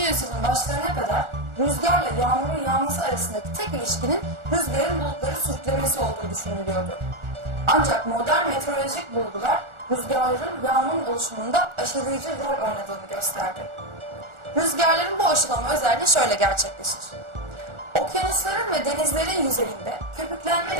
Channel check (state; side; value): late; left; 1.4 ms